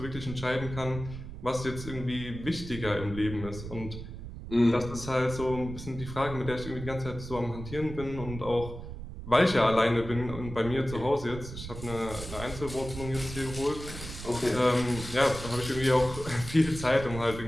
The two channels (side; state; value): right; noise; rumble, 10 dB below the sound